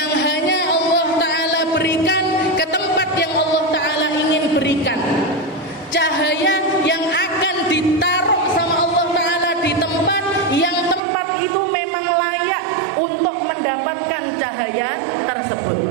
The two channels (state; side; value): drops out; left; at 11.0 s